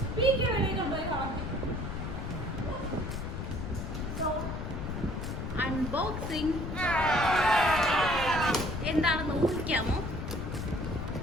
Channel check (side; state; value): left; noise; rumble, 5 dB below the sound